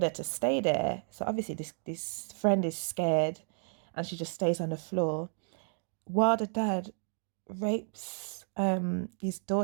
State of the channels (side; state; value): left; silent; 56 dB below the other